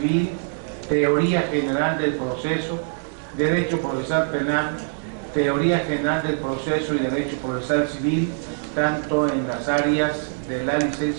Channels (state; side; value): silent; left; digital silence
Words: Teoría General del Proceso, Derecho Procesal Penal, Teoría General del Proceso y Derecho Procesal Civil, tanto en las áreas de la